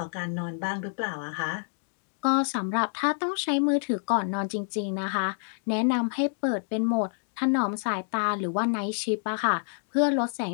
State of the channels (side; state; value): right; silent; digital silence